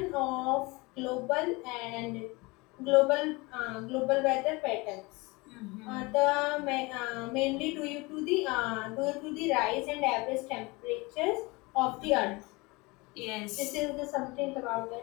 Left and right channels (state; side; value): quieter; right; 24.7 dB